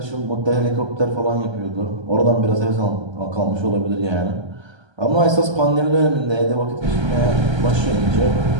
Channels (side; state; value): left; late; 1.3 ms